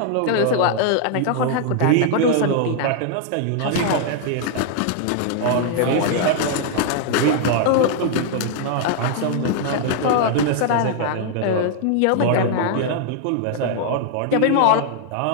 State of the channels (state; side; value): different; both; correlation 0.00